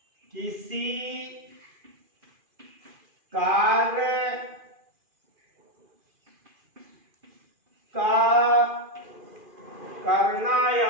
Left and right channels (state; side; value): late; left; 2.4 ms